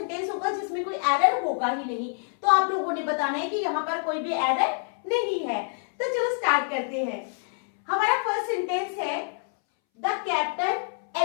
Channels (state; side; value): silent; right; 60 dB below the other